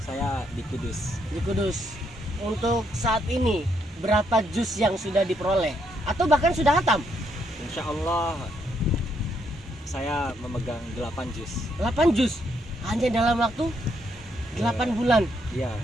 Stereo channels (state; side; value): normal; both; correlation 0.75